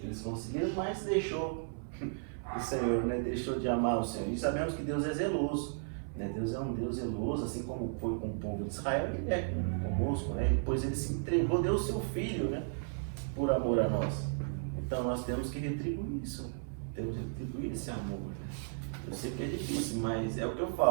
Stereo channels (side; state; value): left; silent; 55 dB below the other